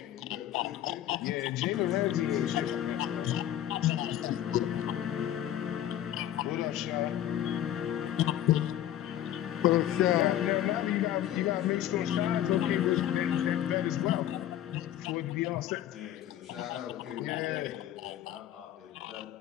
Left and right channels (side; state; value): right; quieter; 11.8 dB